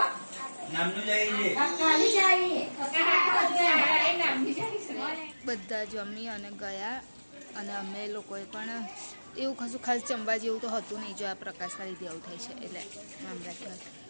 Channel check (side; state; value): both; inverted; correlation -1.00